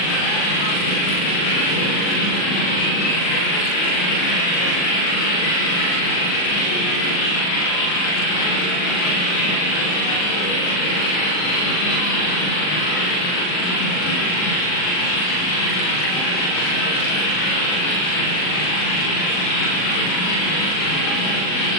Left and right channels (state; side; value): late; right; 39 ms